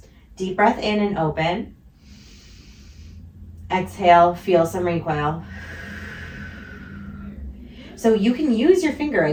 Deep breath in and open. Exhale, feel some recoil. So you can use your finger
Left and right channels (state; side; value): identical; both; correlation 1.00